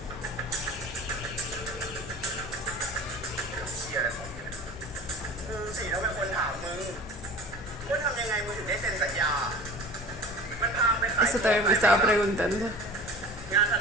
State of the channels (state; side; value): normal; both; correlation 0.39